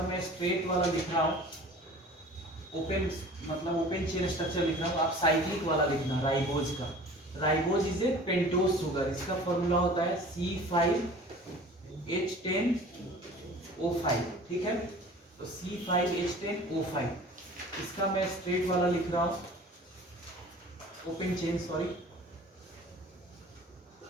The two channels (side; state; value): both; normal; correlation 0.44